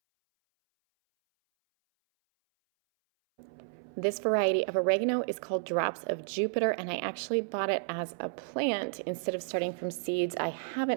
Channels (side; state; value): left; silent; 57 dB below the other